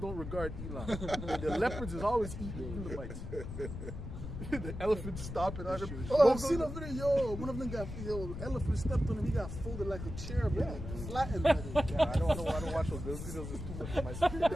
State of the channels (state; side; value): noise; left; rumble, 8 dB below the sound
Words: regard Elam. The leopards is always eating Elamites. The elephants stopping on them. Oh, I've seen a video. Yo, one of them got elephant stepped on him. He got folded like a chair, but flattened. Yeah, I don't watch those videos. It's too much for my spirit